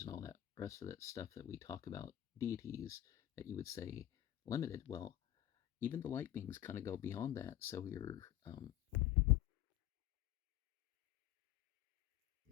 and all that rest of that stuff that we talk about, deities, that you would say limited. Well, even the light beings kind of go beyond that. So you're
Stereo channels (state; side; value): quieter; right; 13.4 dB